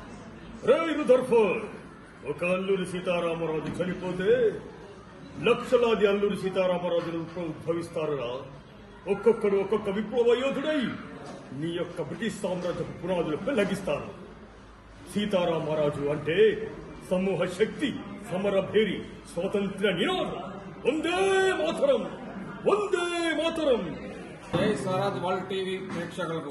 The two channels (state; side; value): identical; both; correlation 1.00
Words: ఒక అల్లూరి సీతారామరాజు చనిపోతే లక్షలాది అల్లూరి సీతారామరాజులు ఉద్భవిస్తారురా. ఒక్కొక్కడు ఒక్కొక్క విప్లవ యోధుడై నీ యొక్క బ్రిటిష్ సామ్రాజ్యపు పునాదులు పెళ్లగిస్తారు. సీతారామరాజు అంటే సమూహ శక్తి, సమరభేరి, స్వాతంత్ర్య నినాదం. వందే మాతరం, వందే మాతరం. జై స్వరాజ్ వరల్డ్ టీవీ